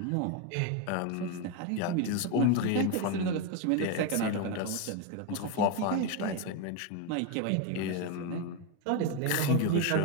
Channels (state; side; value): different; both; correlation 0.02